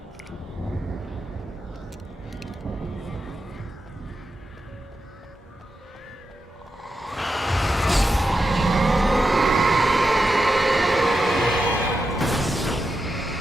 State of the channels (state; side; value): normal; both; correlation 0.88